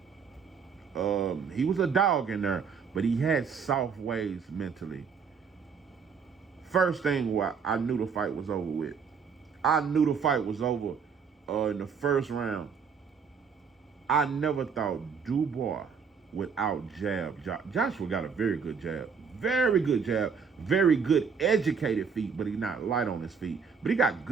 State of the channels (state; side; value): quieter; left; 6.1 dB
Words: He was a dog in there, but he had soft ways mentally. First thing, I knew the fight was over with. I knew the fight was over in the first round. I never thought Dubois without jab. Joshua got a very good jab. Very good jab. Very good educated feet, but he's not light on his feet. But he got